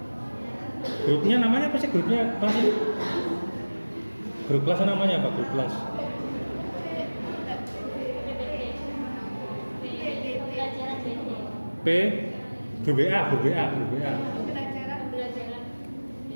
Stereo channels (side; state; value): both; inverted; correlation -1.00